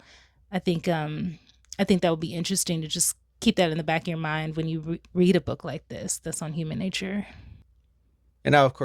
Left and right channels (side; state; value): both; identical; correlation 1.00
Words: I think I think that would be interesting to just keep that in the back of your mind when you read a book like this that's on human nature. And now, of